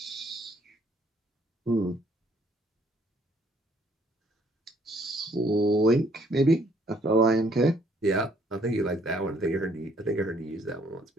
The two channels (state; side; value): normal; both; correlation 0.64